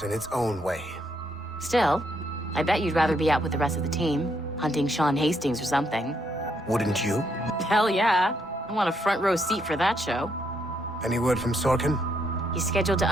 in its own way. Still, I bet you'd rather be out with the rest of the team, hunting Sean Hastings or something. Wouldn't you? Hell yeah. I want a front row seat for that show. Any word from Sorkin? He's scheduled to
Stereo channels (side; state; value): both; normal; correlation 0.75